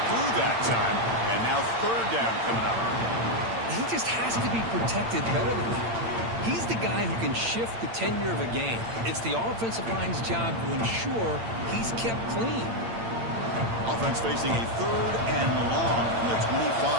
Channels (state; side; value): late; left; 8.8 ms